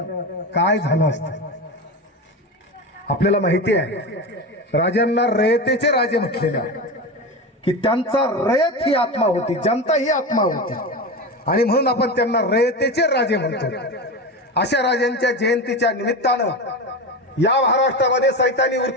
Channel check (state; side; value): normal; both; correlation 0.23